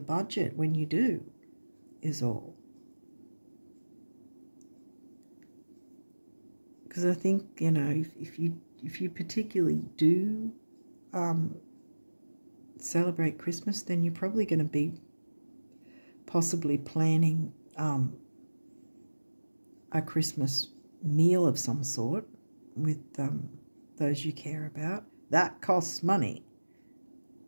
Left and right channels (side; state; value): both; inverted; correlation -1.00